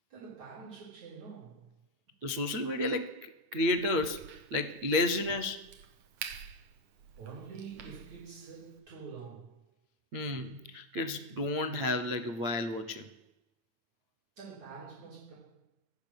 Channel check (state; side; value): late; left; 8.8 ms